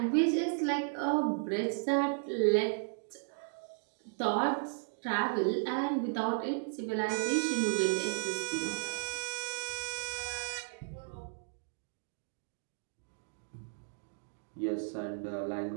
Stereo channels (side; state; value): left; silent; digital silence